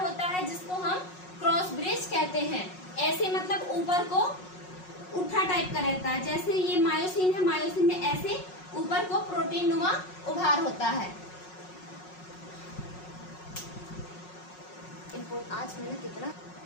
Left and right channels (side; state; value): right; late; 5.5 ms